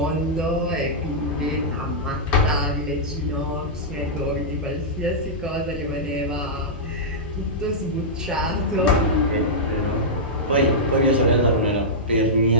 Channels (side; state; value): both; normal; correlation -0.11